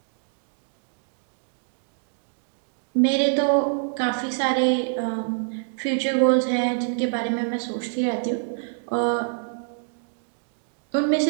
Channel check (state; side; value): silent; left; digital silence